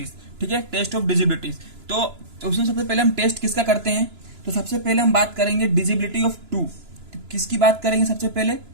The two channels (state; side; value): late; left; 2.9 ms